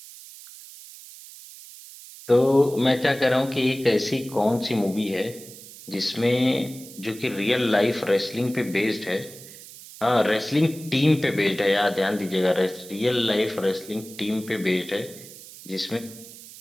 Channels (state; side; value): noise; right; hiss, 17 dB below the sound